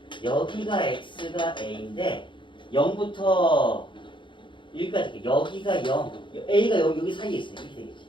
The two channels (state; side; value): late; right; 0.23 ms